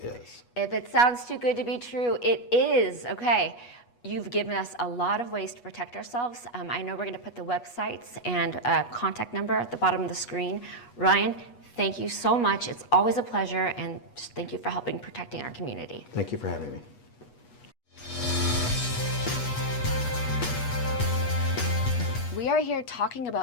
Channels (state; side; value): late; right; 8.3 ms